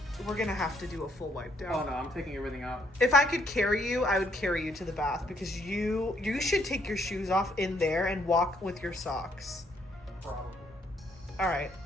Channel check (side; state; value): both; normal; correlation 0.70